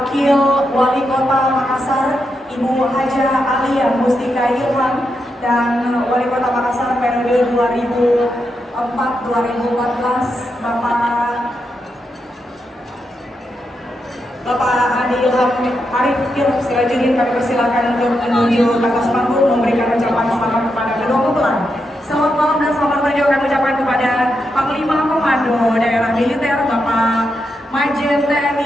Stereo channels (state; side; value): normal; both; correlation 0.84